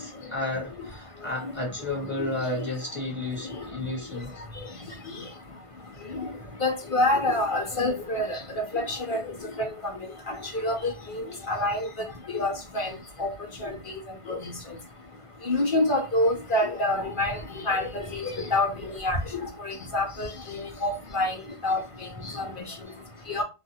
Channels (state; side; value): late; left; 1.5 ms